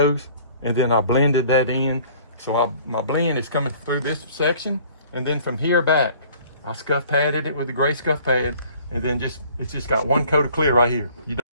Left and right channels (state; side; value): inverted; both; correlation -0.53